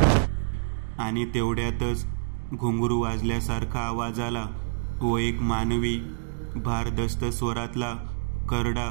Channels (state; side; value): silent; left; digital silence